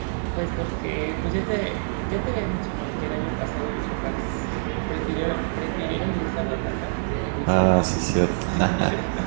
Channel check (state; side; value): silent; left; 62 dB below the other